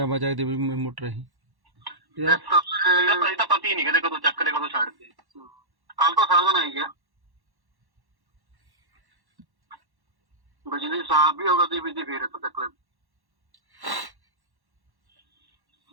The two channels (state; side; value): late; left; 1.1 ms